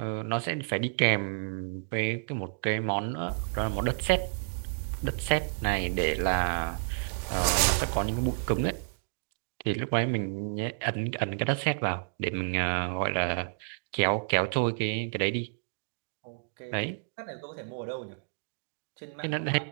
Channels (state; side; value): silent; left; digital silence